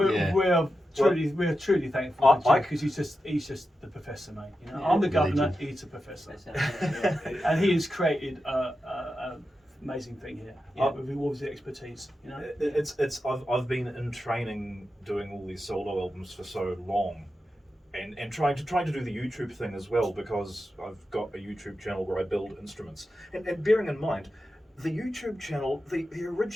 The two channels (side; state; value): both; normal; correlation 0.90